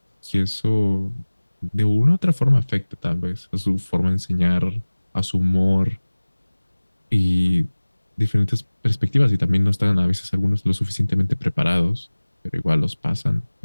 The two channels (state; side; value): inverted; both; correlation -1.00